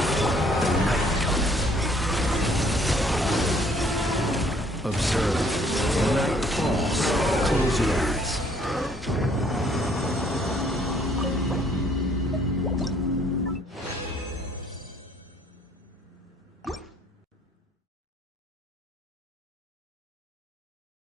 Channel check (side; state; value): both; normal; correlation 0.62